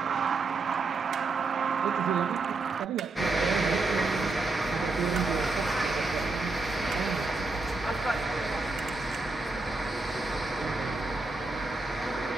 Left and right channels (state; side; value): quieter; left; 3.5 dB